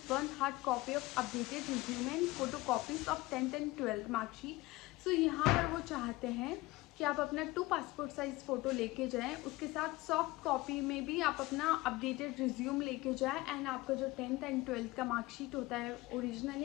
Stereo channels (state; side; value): quieter; right; 20.3 dB